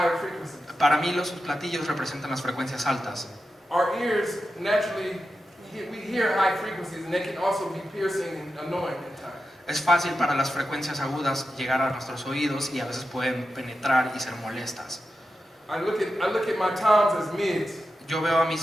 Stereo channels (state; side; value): normal; both; correlation 0.90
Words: frequencies. Para mí los platillos representan las frecuencias altas. Our ears naturally, we hear high frequencies, and they can also be piercing and annoying at times. Es fácil para las frecuencias agudas llegar a nuestros oídos y a veces pueden penetrar y ser molestas. I look at my toms as mids, Yo veo a